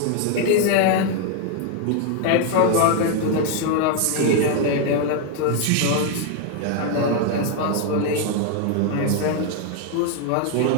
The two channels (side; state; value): both; different; correlation 0.01